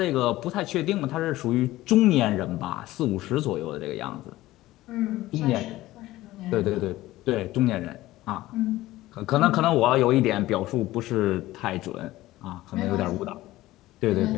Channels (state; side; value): quieter; right; 16.8 dB